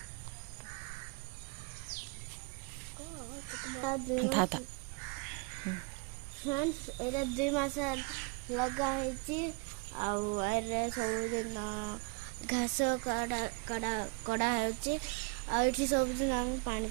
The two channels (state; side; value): quieter; left; 31.7 dB